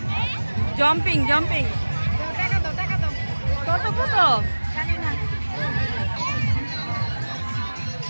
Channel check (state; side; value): inverted; both; correlation -1.00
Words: জাম্পিং জাম্পিং। কত কত